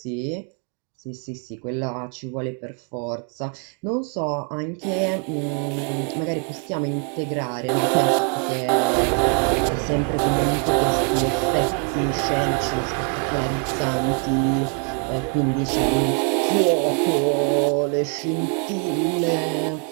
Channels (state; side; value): quieter; left; 39.7 dB